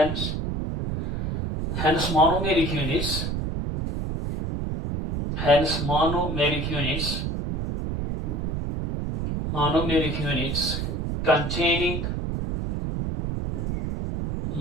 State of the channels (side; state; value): right; noise; rumble, 2 dB below the sound